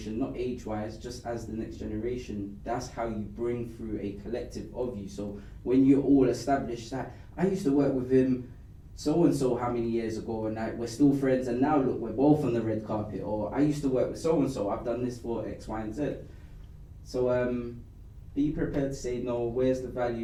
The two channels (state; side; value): identical; both; correlation 1.00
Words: not age-wise, just as the next generation, that's how you bring through a collective of you. So when you're all established, that I used to work with him so-and-so how many years ago, and like, we're still friends, and now look, we're both on the red carpet. Or I used to work with so-and-so, I've done this for X, Y, and Z. So be prepared to say no. Where's the